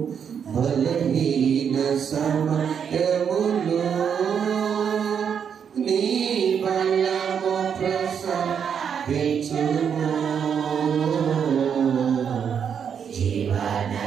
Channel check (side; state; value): left; quieter; 7.5 dB